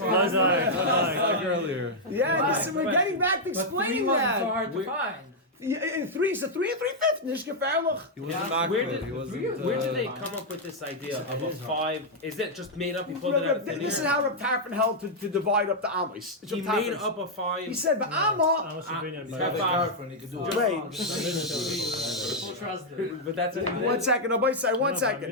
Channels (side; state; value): both; normal; correlation -0.03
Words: like earlier. Yeah, we're getting back to explaining that. hard to find. Three is a 3 and 3/5. Nicht gefährlich. He wasn't Where makbid. did, He wasn't. where did they come up with this idea of a 5? Is it just made up? He pulled it out of thin This is air? how Reb Tarfon held to divide up the Amos. He made up a 5. He said, but Amma. Amos opinion, He's but got the girlfriend, he can do it. Wait. Full trust him. But that's it. One second. No, wait, one no, second.